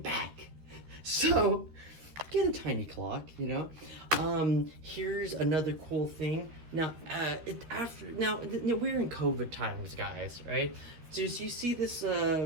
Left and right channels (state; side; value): late; left; 13 ms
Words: So, get a tiny clock, you know? Here's another cool thing. Now, we're in COVID times, guys, right? So you see this,